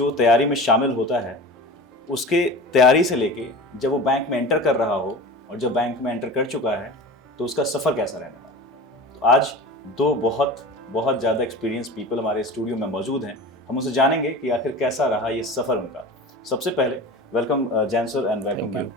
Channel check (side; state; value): both; normal; correlation 0.33